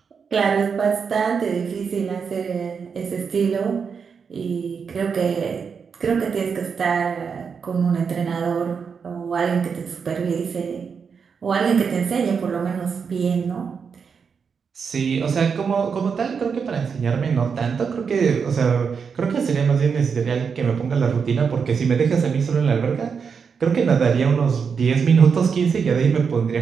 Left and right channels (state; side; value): quieter; left; 6.1 dB